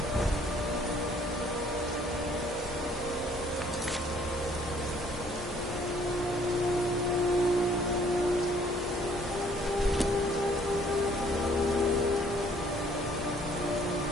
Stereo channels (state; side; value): normal; both; correlation 0.60